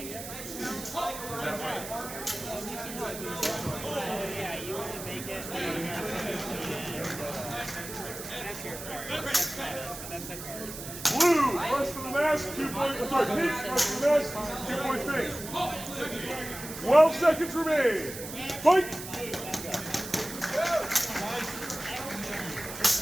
Blue, rush for the mask, 2 points. Sorry, pink, rush for the mask, 2 points pink. 12 seconds remain. Fight!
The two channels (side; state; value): right; noise; hiss, 10 dB below the sound